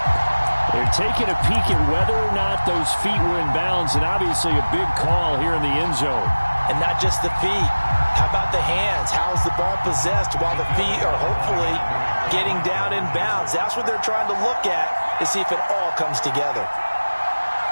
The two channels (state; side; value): inverted; both; correlation -1.00